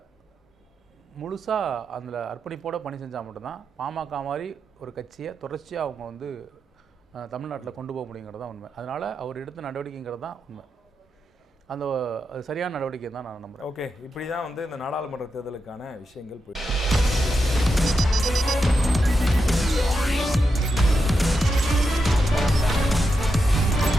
முழுசாக அதில் அர்ப்பணிப்போடு பணி செஞ்சால் மட்டும்தான் பாமக மாதிரி ஒரு கட்சியை தொடர்ச்சியாக அவங்க வந்து தமிழ்நாட்டில் கொண்டு போக முடியுங்கிறது தான் உண்மை. அதனால் அவர் எடுத்த நடவடிக்கைங்கிறது தான் உண்மை. அந்த சரியான நடவடிக்கை தான் நான் நம்புகிறேன். ஓகே, இப்படி தான் வந்து இந்த நாடாளுமன்ற தேர்தலுக்கான விஷயங்கள் போயிட்டு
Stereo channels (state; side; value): normal; both; correlation 0.86